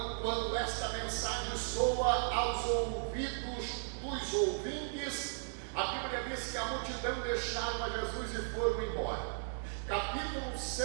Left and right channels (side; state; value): left; silent; digital silence